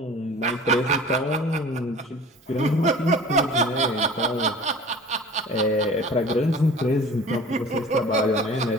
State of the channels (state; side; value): normal; both; correlation 0.42